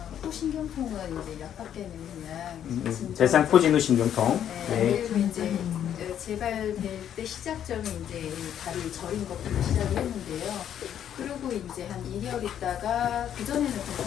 호신경통은 이제 약밖에는 그냥 진짜 대상포진후 신경통. 네, 네. 그리고 이제 재발될 때 시작점이 이제 다리 저린 것부터 시작을 했는데요. 그리고 이제 한 2개월 있다가 그 전에는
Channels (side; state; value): right; quieter; 9.8 dB